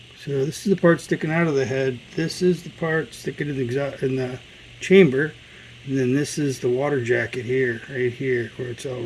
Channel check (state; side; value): identical; both; correlation 1.00